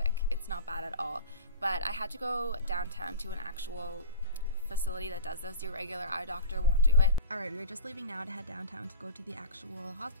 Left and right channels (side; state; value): both; inverted; correlation -0.36